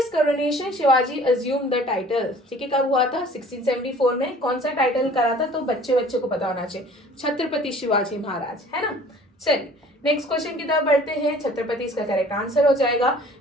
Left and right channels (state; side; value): normal; both; correlation 0.50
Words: coronation Shivaji assume the title. ठीक है, कब हुआ था? 1674 में। कौन सा टाइटल करा था? तो बच्चे बच्चे को पता होना चाहिए, छत्रपति शिवाजी महाराज, है ना। चलिए नेक्स्ट क्वेश्चन की तरफ बढ़ते हैं। छत्रपति इसका करेक्ट आंसर हो जाएगा।